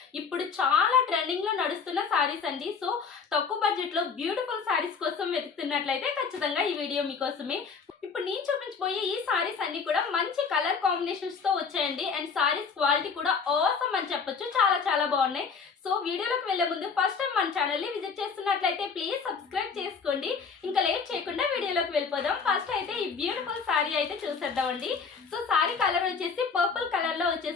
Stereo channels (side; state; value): right; quieter; 5.6 dB